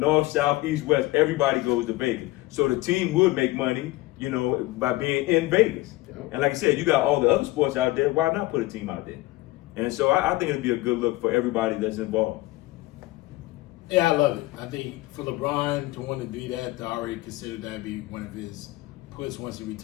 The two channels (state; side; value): quieter; right; 19.4 dB